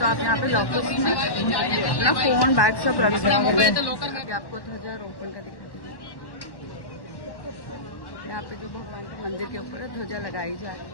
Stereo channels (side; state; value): right; late; 1.1 ms